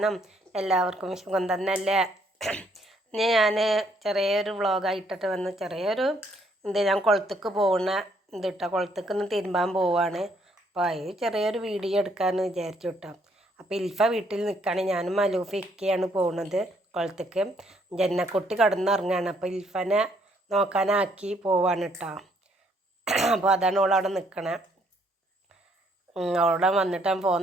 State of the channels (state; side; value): normal; both; correlation 0.68